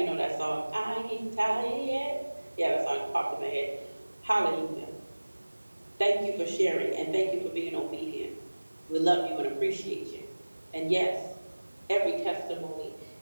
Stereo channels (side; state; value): both; inverted; correlation -1.00